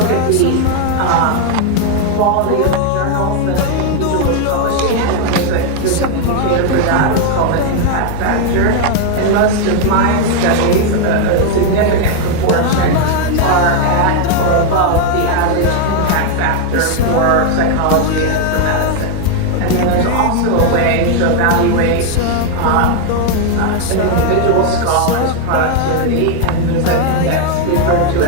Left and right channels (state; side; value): different; both; correlation 0.01